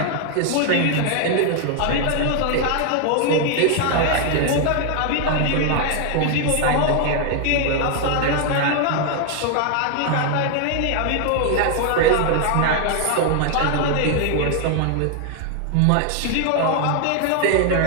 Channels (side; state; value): both; different; correlation 0.00